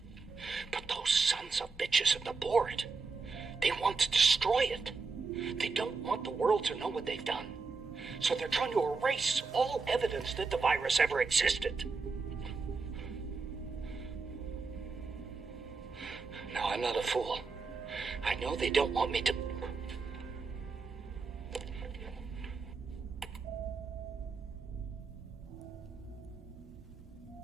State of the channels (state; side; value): quieter; left; 4.4 dB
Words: But those sons of bitches at the board, they want to destroy it. They don't want the world to know what they've done. So they're trying to erase all evidence that the virus ever existed. Now, I'm not a fool. I know they don't want me to...